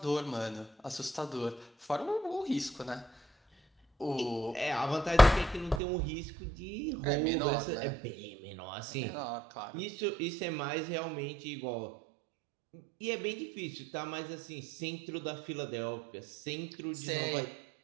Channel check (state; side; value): drops out; left; at 5.8 s